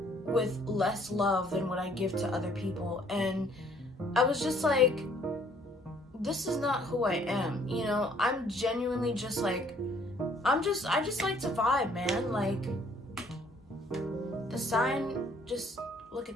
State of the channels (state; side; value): normal; both; correlation 0.62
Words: with less love than what I give to other people. And I was just like, this is not who I am. I'm genuinely just like, I just like to vibe, man. Like, the sign, just look at